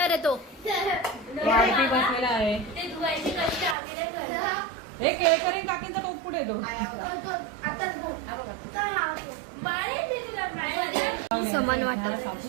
रे तो वाढपी बसलेला आहे हे केळकरी काकीचा टोप कुठे आहे तो समान वाटप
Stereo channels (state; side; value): drops out; left; at 3.8 s